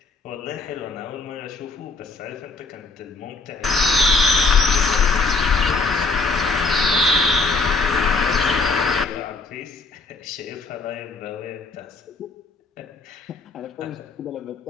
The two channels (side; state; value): right; quieter; 3.9 dB